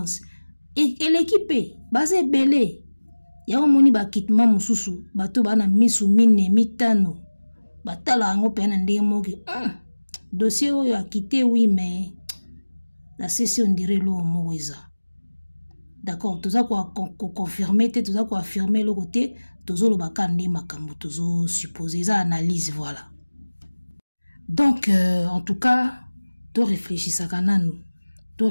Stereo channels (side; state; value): both; inverted; correlation -1.00